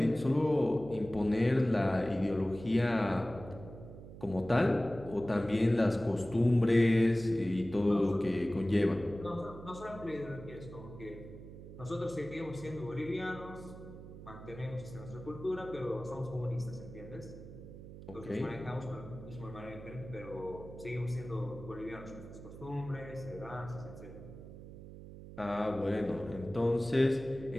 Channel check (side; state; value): right; noise; hum, 14 dB below the sound